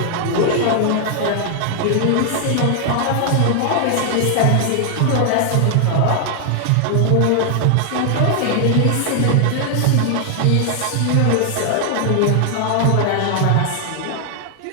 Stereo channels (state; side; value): different; both; correlation 0.00